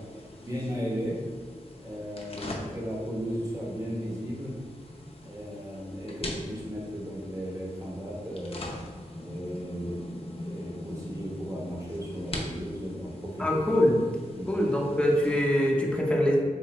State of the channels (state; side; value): normal; both; correlation 0.86